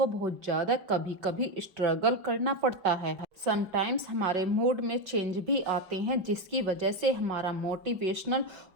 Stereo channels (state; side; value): late; left; 5.2 ms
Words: बहुत ज़्यादा कभी कभी स्ट्रगल करना पड़ता है। समटाइम्स हमारे मूड में चेंज भी आते हैं, जिसकी वजह से हमारा मोटिवेशनल